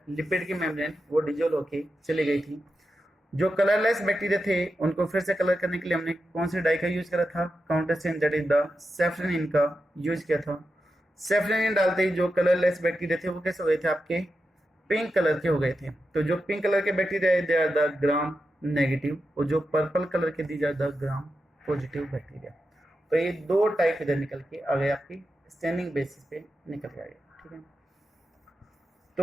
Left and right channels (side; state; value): both; normal; correlation 0.89